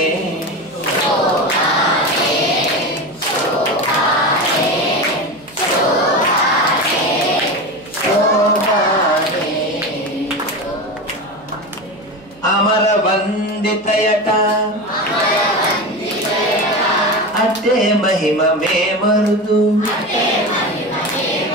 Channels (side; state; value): right; noise; hum, 26 dB below the sound